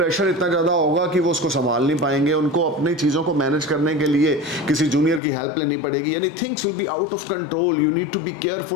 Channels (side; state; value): right; drops out; at 5.2 s